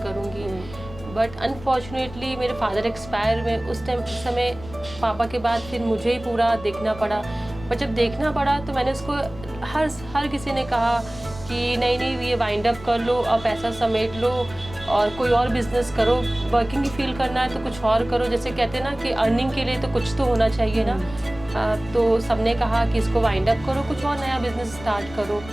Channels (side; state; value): left; noise; rumble, 16 dB below the sound